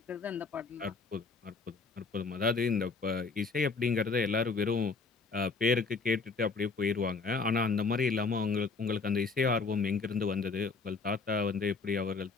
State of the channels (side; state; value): right; quieter; 4.4 dB